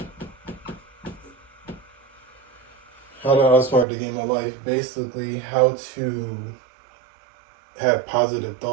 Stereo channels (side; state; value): left; drops out; at 3.9 s